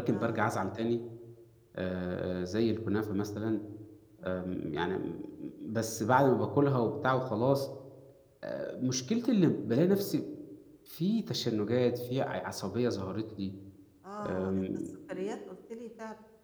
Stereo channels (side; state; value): both; identical; correlation 1.00